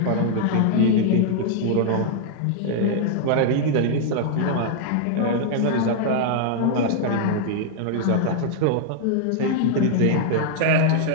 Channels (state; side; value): different; both; correlation -0.01